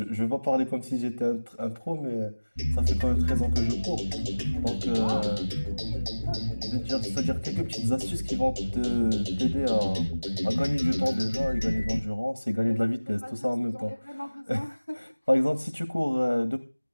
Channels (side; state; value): both; inverted; correlation -1.00